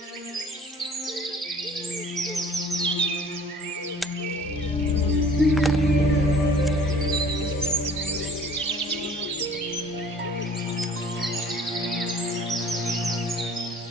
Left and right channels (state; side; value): normal; both; correlation 0.51